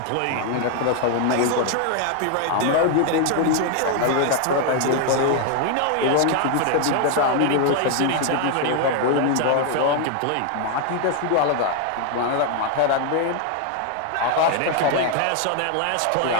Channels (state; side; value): different; both; correlation 0.00